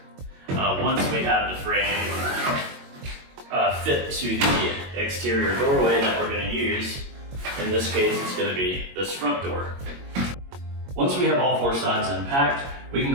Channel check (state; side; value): late; left; 22 ms